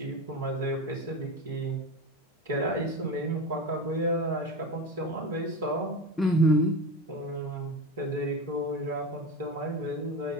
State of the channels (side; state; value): both; normal; correlation 0.24